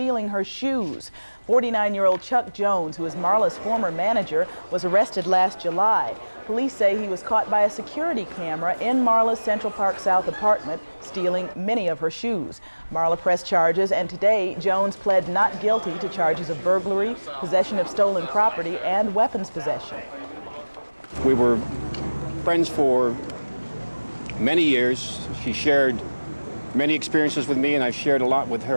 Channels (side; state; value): both; inverted; correlation -1.00